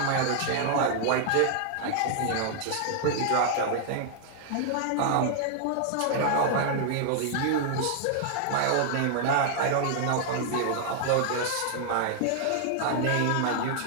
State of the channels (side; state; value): both; different; correlation -0.01